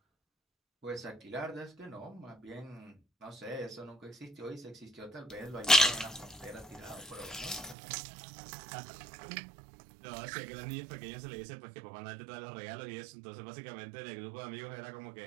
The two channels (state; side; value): drops out; left; at 7.8 s